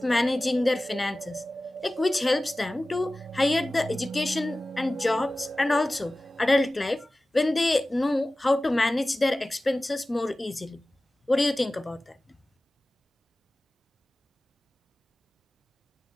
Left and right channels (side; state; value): both; normal; correlation 0.97